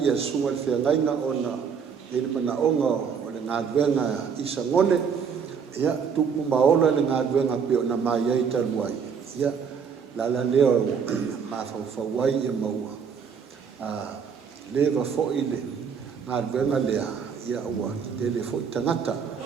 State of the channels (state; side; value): quieter; left; 6.6 dB